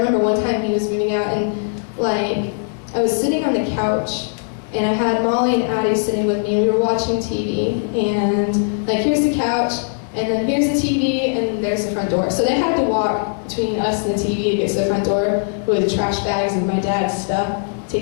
one time he was moving out and I was sitting on the couch and I had Molly and Addie sitting with me and we were watching TV. And here's the couch, and then here's the TV, and there's the front door. So they had to walk between us and the TV to get to the front door with trash bags of my dad's stuff,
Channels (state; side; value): silent; right; digital silence